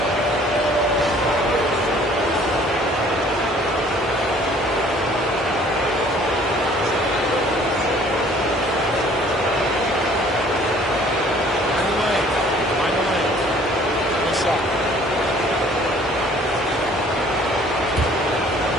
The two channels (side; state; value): both; normal; correlation 0.55